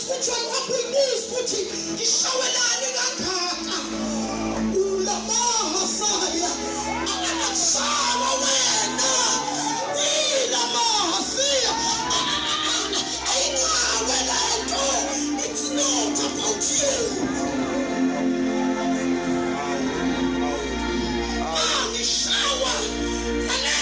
kwakuyibuza ukuthi ngishawelane kangaka. Ulamaha saya. Akakushawa wena. Ilamaha siya. Ayingawe lento. It's not about you. Angishawa.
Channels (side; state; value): both; identical; correlation 1.00